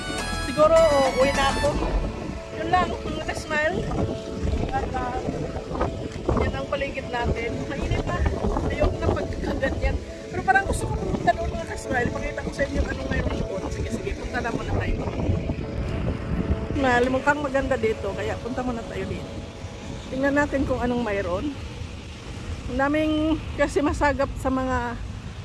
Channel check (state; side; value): identical; both; correlation 1.00